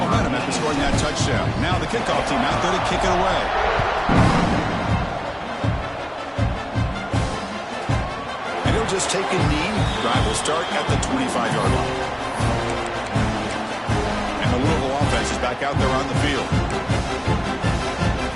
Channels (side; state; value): both; identical; correlation 1.00